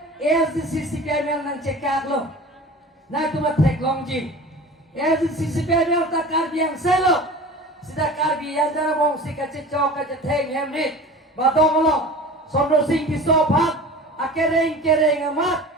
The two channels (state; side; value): normal; both; correlation 0.38